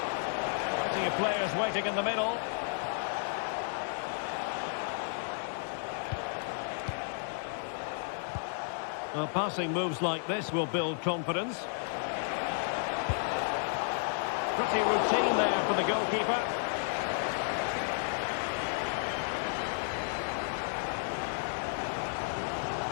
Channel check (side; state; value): right; silent; 56 dB below the other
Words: Plenty of players waiting in the middle. Well, passing moves like this will build confidence. Pretty routine there for the goalkeeper.